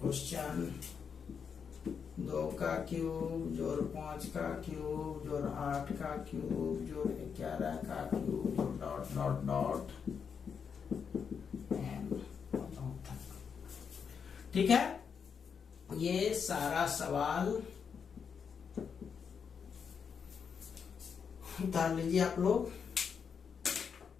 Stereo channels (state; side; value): quieter; right; 6.6 dB